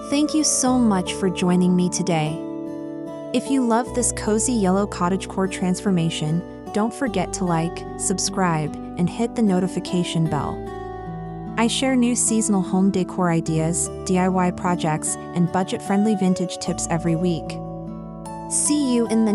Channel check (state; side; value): identical; both; correlation 1.00